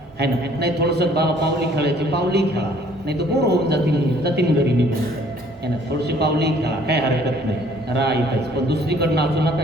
आहे ना. नाही थोडंसं बाबा पावली खेळायची, पावली खेळा, नाही तर बोर होऊन जातील घरी निघून, आहे ना. थोडीशी पावली खेळा, काय हरकत नाही, राहा इथंच. पण दुसरीकडे नाचू नका,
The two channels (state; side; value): normal; both; correlation 0.58